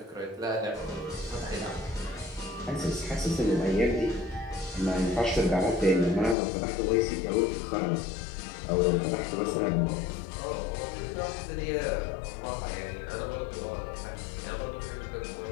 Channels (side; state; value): right; drops out; at 6.4 s